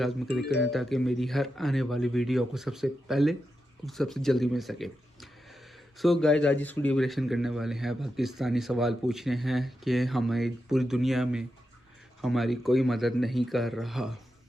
क्लिक करें ताकि मेरी हर आने वाली वीडियो आपको सबसे पहले और सबसे जल्दी मिल सके। सो गाइस आज इस वीडियो को रिएक्शन करने वाले हैं, पाकिस्तानी सवाल पूछ रहे हैं कि हमें पूरी दुनिया में हमारी कोई मदद नहीं कर रहा,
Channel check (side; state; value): both; normal; correlation 0.88